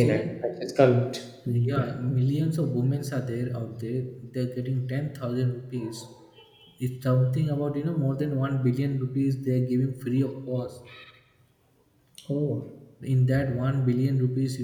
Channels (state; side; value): identical; both; correlation 1.00